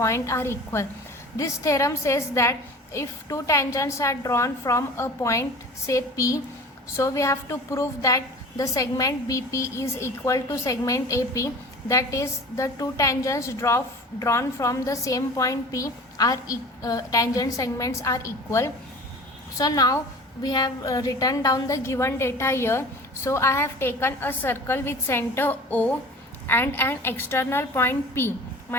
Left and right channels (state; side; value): normal; both; correlation 0.40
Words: are equal. This theorem says that if two tangents are drawn from a point say P, so we have to prove that the segment BP is equal to segment AP, that is the two tangents drawn from the same point P are tangent segments are equal. So now we have written down the given data here. So I have taken a circle with center O and an external point P.